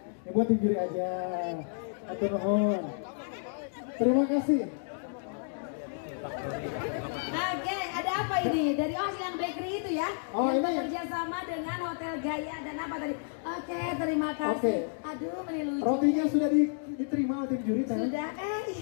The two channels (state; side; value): silent; right; digital silence